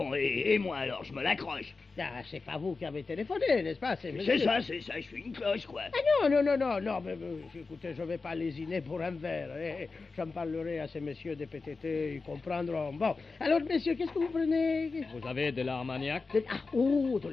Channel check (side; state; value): right; quieter; 4.1 dB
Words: et moi alors, je me l'accroche. Ah, c'est pas vous qui avez téléphoné, n'est-ce pas? C'est ça, je suis une cloche, quoi. Ah non, mais écoutez, je vais pas lésiner pour un verre. J'en parlerai à ces messieurs des PTT, ils comprendront. Bon, alors, messieurs, qu'est-ce que vous prenez? Vous avez de l'Armagnac? De